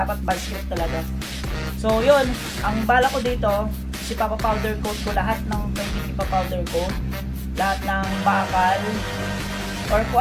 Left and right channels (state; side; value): identical; both; correlation 1.00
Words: vice grip talaga. So, yun, ang bala ko dito, ipapa-powder coat ko lahat ng pwedeng ipa-powder coat, lahat ng bakal or kung